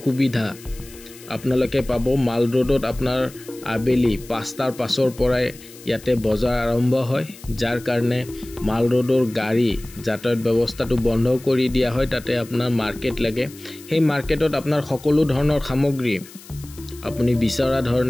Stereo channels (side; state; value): left; noise; hiss, 20 dB below the sound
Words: সুবিধা আপোনালোকে পাব মাল ৰোডত আপোনাৰ আবেলি 5টাৰ পাছৰ পৰাই ইয়াতে বজাৰ আৰম্ভ হয় যাৰ কাৰণে মাল ৰোডৰ গাড়ী যাতায়াত ব্যৱস্থাটো বন্ধ কৰি দিয়া হয় তাতে আপোনাৰ মাৰ্কেট লাগে সেই মাৰ্কেটত আপোনাৰ সকলো ধৰণৰ সামগ্ৰী আপুনি বিচৰা